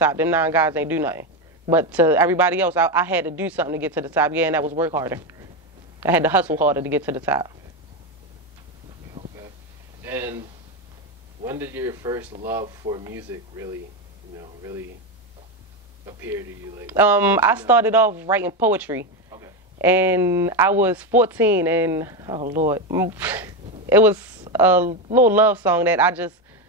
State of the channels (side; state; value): both; normal; correlation 0.12